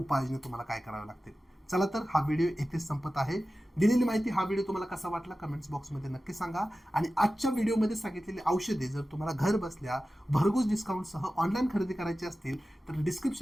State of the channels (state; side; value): normal; both; correlation 0.95